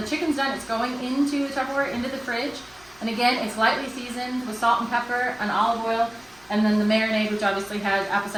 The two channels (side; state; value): left; noise; rumble, 29 dB below the sound